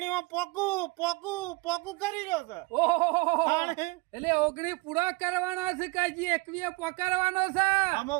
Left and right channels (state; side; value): quieter; left; 26.2 dB